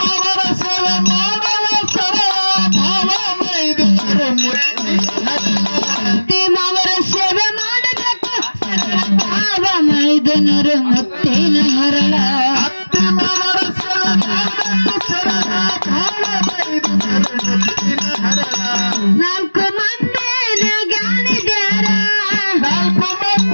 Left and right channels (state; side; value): inverted; both; correlation -1.00